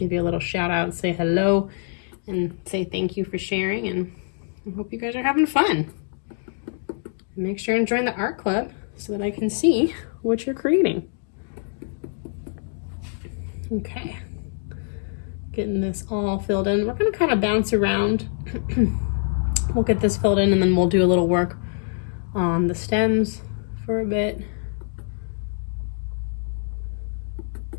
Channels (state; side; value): silent; right; digital silence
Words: you a little shout out, say hello, and say thank you for sharing, and I hope you guys are having fun. Make sure and join the art club so that I can see what you're creating. Okay, getting this all filled in. We're going to kind of bounce around. We'll get this filled in and then we'll do a little work on the stems for a bit.